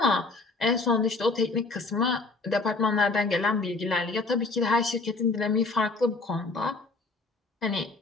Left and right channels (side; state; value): right; quieter; 3.6 dB